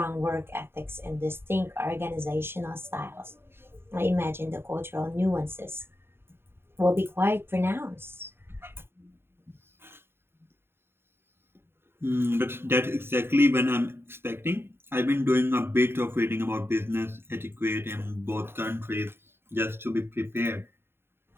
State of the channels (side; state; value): left; late; 0.11 ms